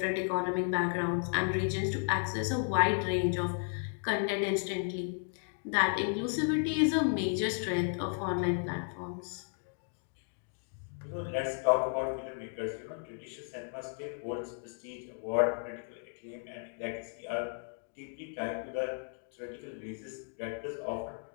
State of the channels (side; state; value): right; silent; 55 dB below the other